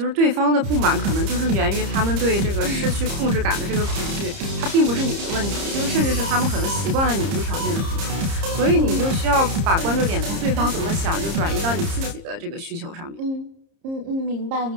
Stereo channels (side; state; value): left; late; 30 ms